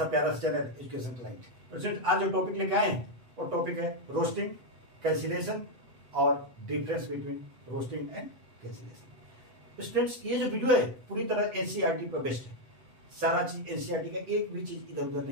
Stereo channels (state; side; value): late; left; 8.0 ms